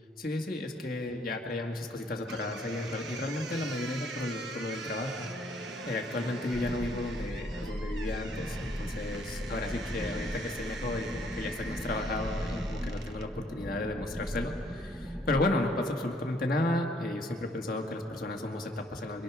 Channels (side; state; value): both; normal; correlation 0.65